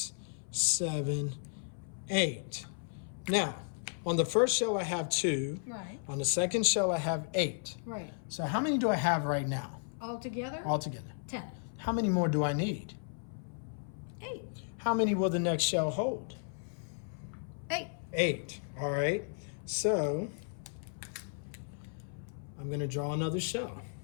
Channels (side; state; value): right; silent; 55 dB below the other